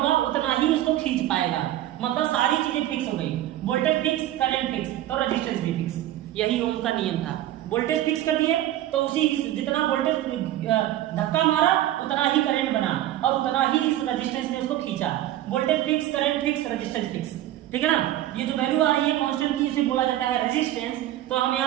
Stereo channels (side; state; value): left; quieter; 13.6 dB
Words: उतना ही उसको खींच पाएगा। मतलब सारी चीजें फिक्स हो गई, वोल्टेज फिक्स, करंट फिक्स, तो रेजिस्टेंस भी फिक्स। यही ओम का नियम था। वोल्टेज फिक्स कर दिए तो उसी जितना वोल्टेज धक्का मारा उतना ही करंट बना और उतना ही इस रेजिस्टेंस ने उसको खींचा। Voltage fix, current fix, resistance fix. ठीक है ना। ये जो वैल्यू आ रही है कांस्टेंट की, इसे बोला जाता है रेजिस्टेंस। तो हम